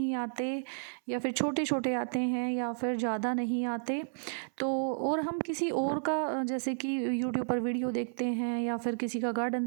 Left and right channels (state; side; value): silent; left; 56 dB below the other